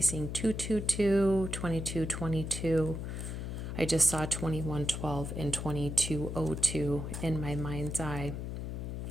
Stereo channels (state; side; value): noise; left; hum, 5 dB below the sound